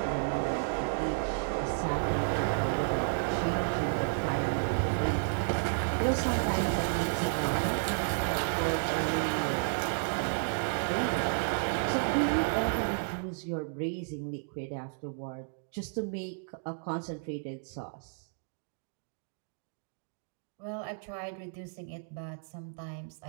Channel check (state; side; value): silent; left; digital silence